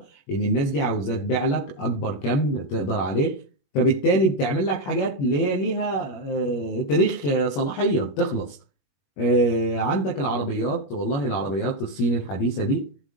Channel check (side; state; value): right; late; 21 ms